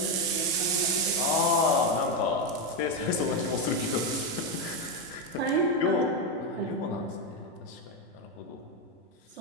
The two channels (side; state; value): both; normal; correlation 0.08